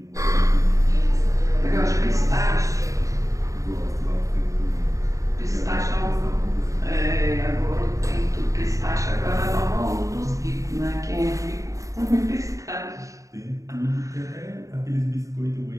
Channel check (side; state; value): left; late; 0.16 ms